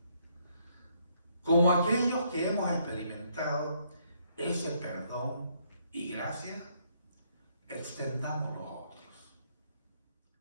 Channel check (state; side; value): inverted; both; correlation -0.71